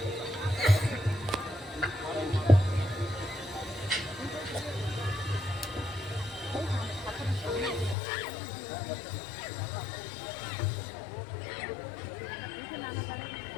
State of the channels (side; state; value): right; drops out; at 8.0 s